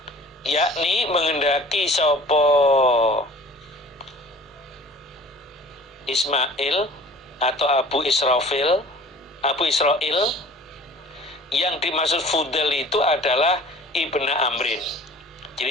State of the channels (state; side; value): normal; both; correlation 0.46